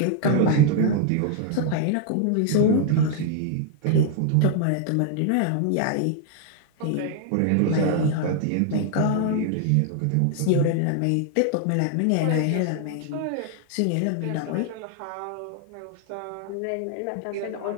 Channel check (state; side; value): different; both; correlation 0.00